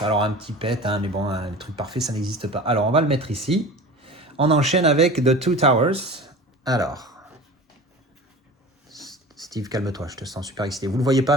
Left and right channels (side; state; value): both; normal; correlation 0.37